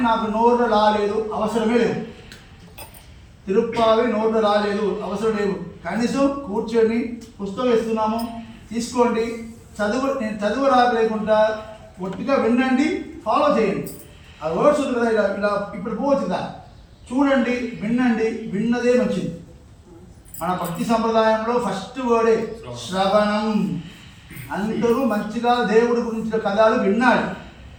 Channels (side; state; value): both; identical; correlation 1.00